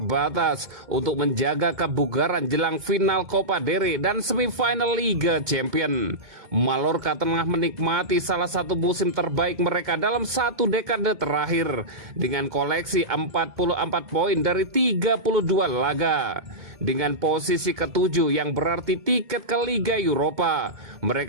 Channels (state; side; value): late; left; 2.2 ms